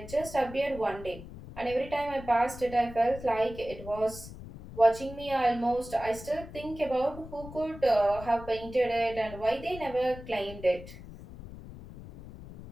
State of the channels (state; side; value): noise; left; rumble, 14 dB below the sound